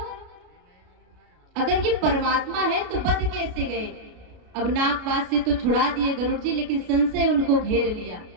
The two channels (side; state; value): left; late; 33 ms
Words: अगर ये परमात्मा है तो बच कैसे गए? अब नागपाश से तो छुड़ा दिए गरुड़ जी, लेकिन संशय उनको घेर लिया।